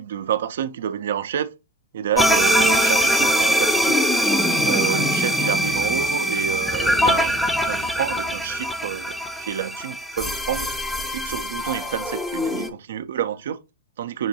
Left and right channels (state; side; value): normal; both; correlation 0.54